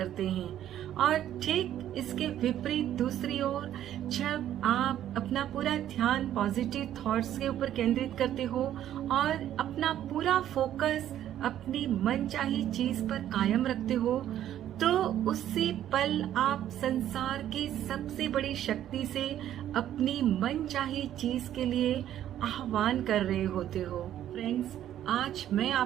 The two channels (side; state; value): left; quieter; 11.5 dB